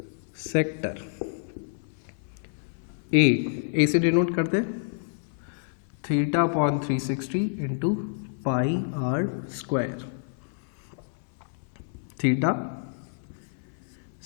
sector A से डिनोट करते हैं theta upon 360 into pi R square. Theta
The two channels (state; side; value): silent; right; 57 dB below the other